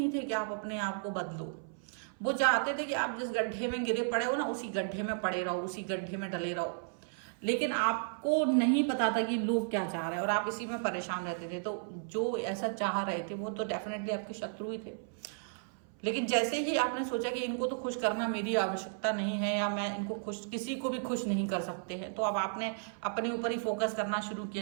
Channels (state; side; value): silent; left; 55 dB below the other